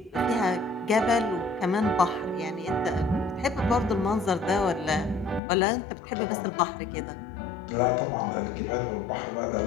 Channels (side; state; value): right; drops out; at 5.4 s